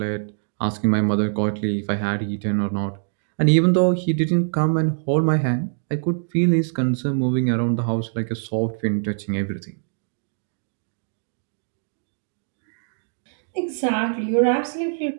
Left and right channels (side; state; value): left; silent; digital silence